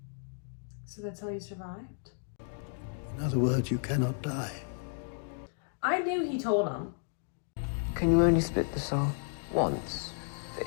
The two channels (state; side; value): silent; right; digital silence